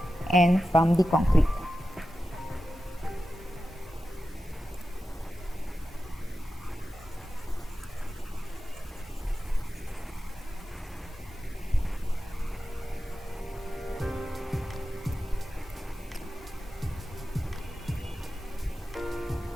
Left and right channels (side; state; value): both; normal; correlation 0.92